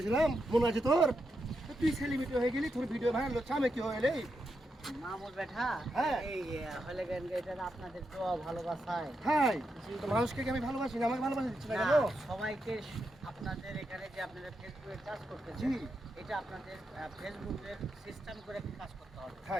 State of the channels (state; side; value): normal; both; correlation 0.85